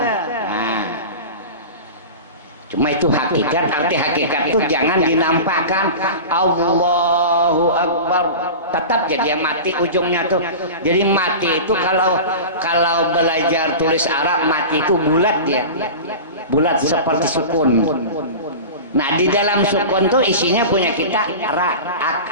Nah, cuma itu hakikat. Arti hakikat itu jangan dinampakkan. Allahu Akbar tetap jadi mati ujungnya tuh. Jadi mati itu kalau belajar tulis Arab, mati itu bulat dia. Bulat seperti sukun. Nah, di dalam sukun tuh isinya punya kita ra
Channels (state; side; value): inverted; both; correlation -0.31